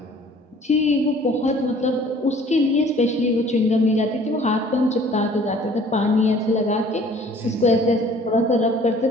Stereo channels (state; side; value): normal; both; correlation 0.53